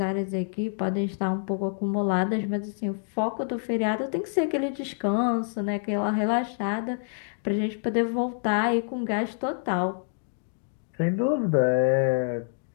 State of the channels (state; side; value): silent; right; digital silence